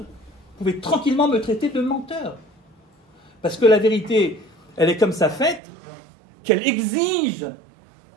pouvez tranquillement me traiter de menteur. Parce que la vérité, elle est comme ça faite, qu'elle exige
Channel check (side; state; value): left; drops out; at 5.6 s